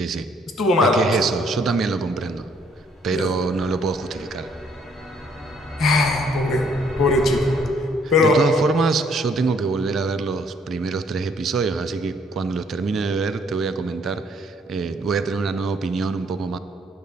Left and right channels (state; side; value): normal; both; correlation 0.65